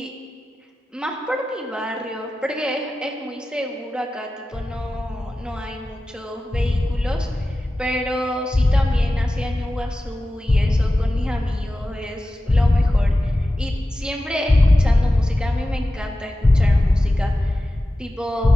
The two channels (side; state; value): both; normal; correlation 0.94